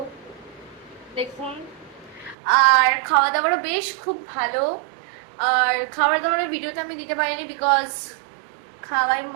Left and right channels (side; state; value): left; drops out; at 2.4 s